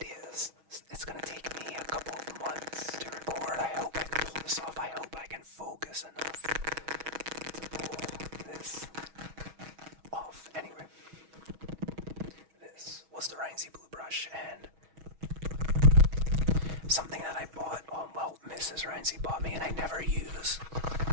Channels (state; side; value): late; left; 6.3 ms